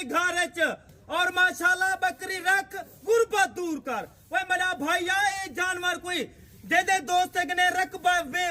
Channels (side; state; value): both; identical; correlation 1.00